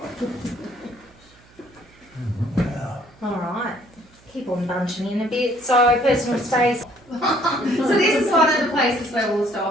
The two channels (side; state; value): right; noise; hum, 28 dB below the sound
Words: Alright, keep on bunching in a bit. So personal space. So this is one of the places where we'll